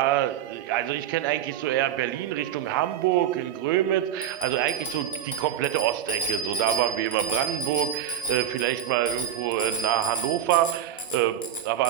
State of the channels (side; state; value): left; quieter; 10.4 dB